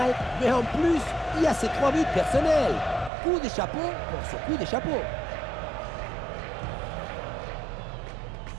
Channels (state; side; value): drops out; left; at 3.1 s